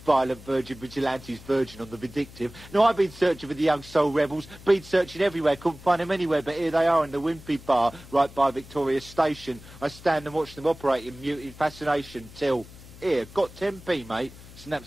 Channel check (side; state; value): left; noise; hum, 19 dB below the sound